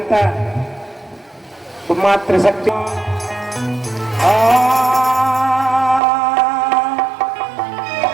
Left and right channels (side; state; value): left; drops out; at 6.0 s